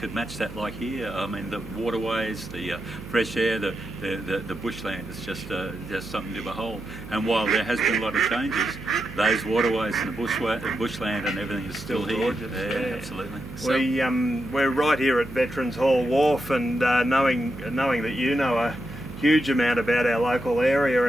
match that like here. I mean, the waterways, the fresh air, the bushland is just something to behold. And while there has been a lot of changes, those waterways and the bushland and everything is still here. Gorgeous. Yeah, absolutely. So, we're right here at Veterans Hall Wharf, and knowing that you know a huge amount about our local area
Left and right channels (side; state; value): right; noise; hum, 13 dB below the sound